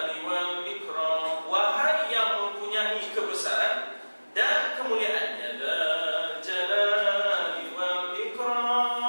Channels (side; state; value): both; inverted; correlation -1.00